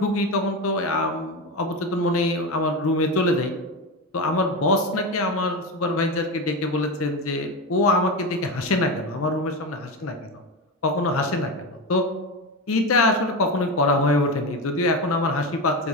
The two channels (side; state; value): both; normal; correlation 0.18